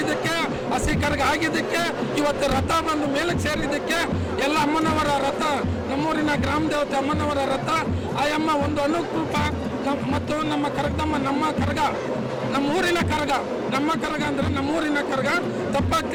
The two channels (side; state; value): both; identical; correlation 1.00